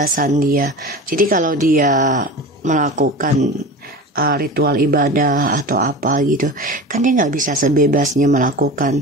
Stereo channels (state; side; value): normal; both; correlation 0.32